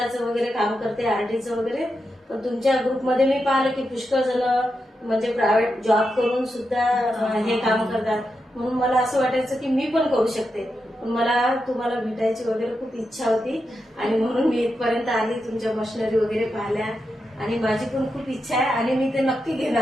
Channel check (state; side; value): normal; both; correlation 0.87